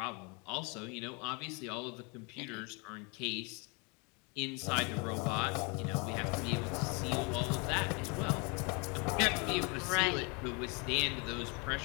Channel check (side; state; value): right; quieter; 31.5 dB